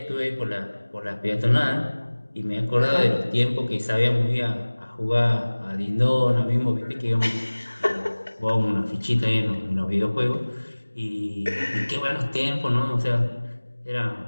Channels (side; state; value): both; inverted; correlation -1.00